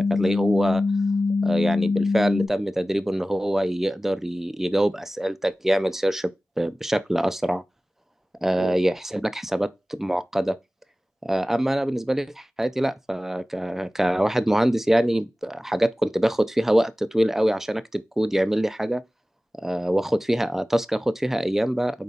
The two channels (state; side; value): normal; both; correlation 0.97